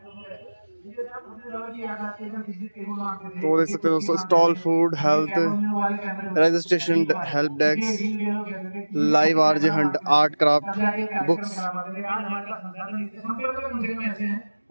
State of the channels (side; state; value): both; inverted; correlation -1.00